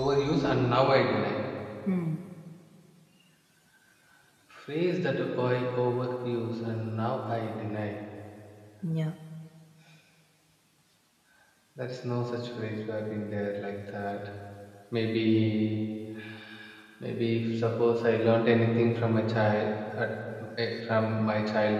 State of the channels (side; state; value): both; identical; correlation 1.00